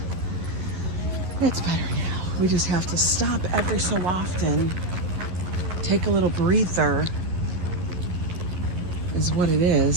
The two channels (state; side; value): late; left; 11 ms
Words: It's better now. We just have to stop every so often. Take a little breather is what it